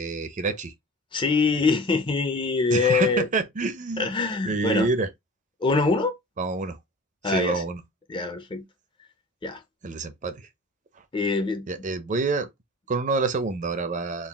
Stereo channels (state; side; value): normal; both; correlation 0.38